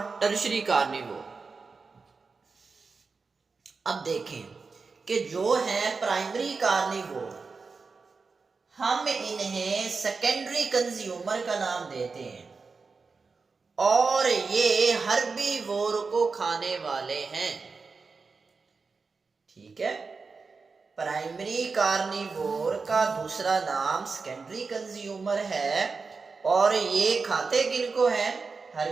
टर्शरी कार्निवोर। अब देखें कि जो है प्राइमरी कार्निवोर, हम इन्हें सेकेंडरी कंज्यूमर का नाम देते हैं और ये हर्बीवोर को खाने वाले हैं। ठीक है, प्राइमरी कार्निवोर का दूसरा नाम सेकेंडरी कंज्यूमर है और ये खाते किनको हैं?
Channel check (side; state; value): left; quieter; 4.5 dB